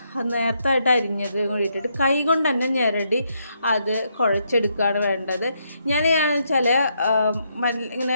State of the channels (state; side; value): inverted; both; correlation -0.76